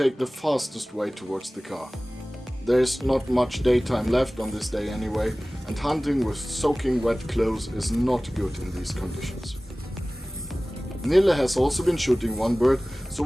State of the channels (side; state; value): both; normal; correlation 0.98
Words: the fastest way towards the car. There's not much daytime left on this day anyway, and hunting with soaking wet clothes is not good in these conditions. Nille has also been shooting one bird, so